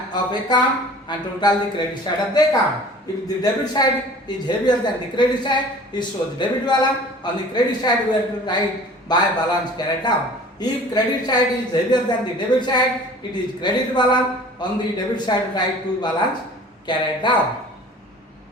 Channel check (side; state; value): both; normal; correlation 0.46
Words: account and total the credit side of the account. If the debit side is heavier than the credit side, it shows debit balance. On the credit side, we have to write by balance carried down. If credit side is heavier than the debit side, it is credit balance. On the debit side, write to balance carried down.